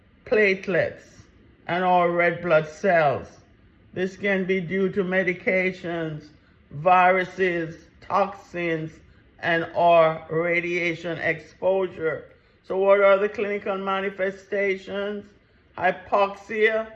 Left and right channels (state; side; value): identical; both; correlation 1.00